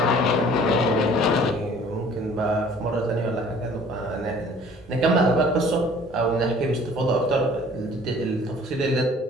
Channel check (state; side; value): normal; both; correlation 0.52